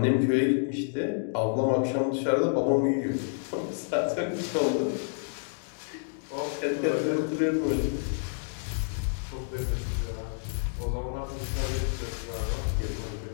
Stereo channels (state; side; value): silent; right; digital silence